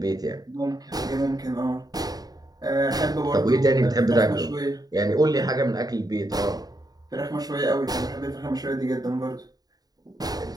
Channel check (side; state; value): left; late; 0.18 ms